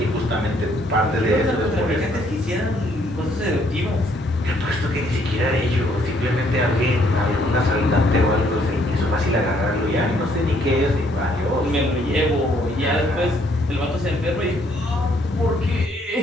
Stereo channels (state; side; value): normal; both; correlation 0.67